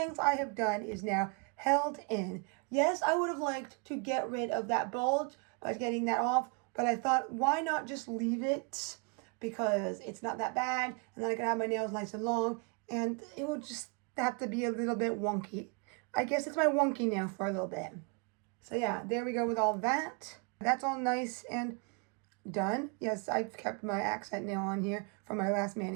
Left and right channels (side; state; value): left; quieter; 34.8 dB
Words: I have done is now held in. Yes, I would have liked to get rid of that bulge by getting that off, but I thought, why not just leave it? Because it's not that bad, and then I can have my nails nice and long, and it will just have to be a little bit wonky. I guess it's my wonky nail for a little bit. So yeah, there we go with all that. That's all nice and done. Yes, I've kept my accent nail on here from my last